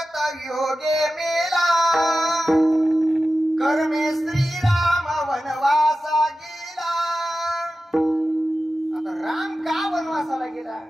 योगे मेला, कर्मे श्रीराम वनवासा गेला. आता राम का वनवासाला गेला?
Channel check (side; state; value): both; normal; correlation 0.93